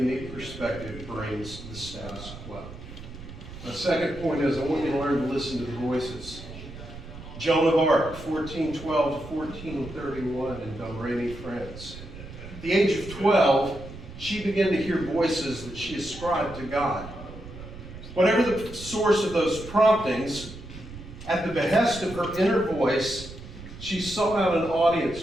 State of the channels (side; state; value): right; noise; rumble, 13 dB below the sound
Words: perspective brings to the status quo. My second point is I want you to learn to listen to the voices. Joan of Arc, 1412 to 1431 in Domremy, France. At the age of 12, she began to hear voices that she ascribed to God. Whatever the source of those promptings, at the behest of her inner voice, she sought out an audience